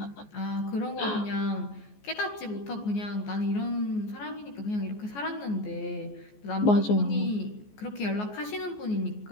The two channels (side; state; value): right; late; 14 ms